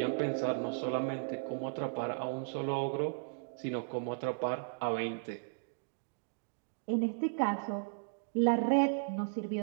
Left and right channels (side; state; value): left; silent; digital silence